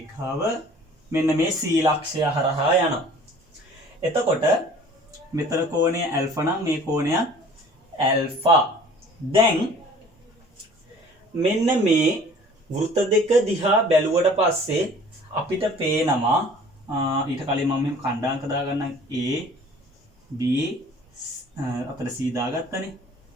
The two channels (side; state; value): both; normal; correlation 0.49